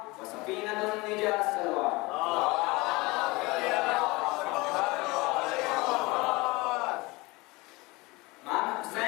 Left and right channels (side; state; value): right; quieter; 23.4 dB